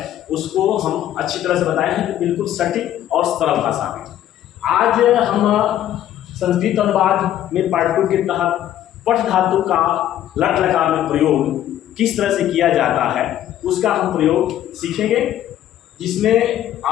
उसको हम अच्छी तरह से बताए हैं, बिल्कुल सटीक और सरल भाषा में। आज हम संस्कृत अनुवाद में पार्ट 2 के तहत पठ धातु का लट लकार में प्रयोग किस तरह से किया जाता है उसका हम प्रयोग सीखेंगे, जिसमें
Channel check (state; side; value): quieter; right; 12.0 dB